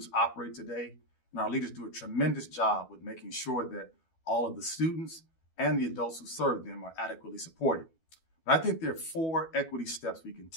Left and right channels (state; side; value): late; right; 12 ms